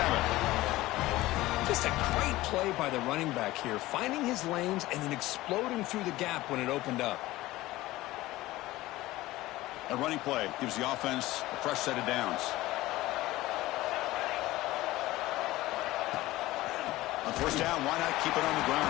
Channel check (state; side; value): quieter; right; 17.7 dB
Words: Just a great play by the running back here, finding his lanes and then exploding through the gap when it opened up. A running play gives the offense a fresh set of downs. On first down, why not keep it on the